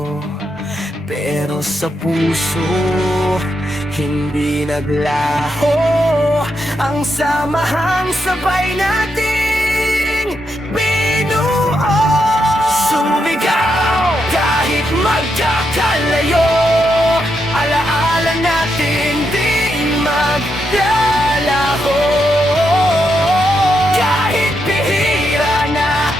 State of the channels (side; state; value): both; normal; correlation 0.82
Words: Pero sa puso, hindi naglaho ang samahang sabay nating binuo. Sumigaw kahit magkakalayo, alaala natin di maglalaho. Kahit bihira na